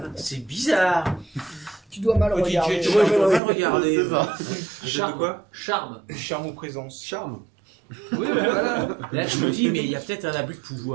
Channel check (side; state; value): left; drops out; at 3.4 s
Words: C'est bizarre. Tu dois mal Petit regarder. jet de Tu vois, je dois charme. pas le regarder. C'est ça. Charme. Charme. Charme ou présence. Charme. Oui, voilà. Là, je me dis, mais il y a peut-être un abus de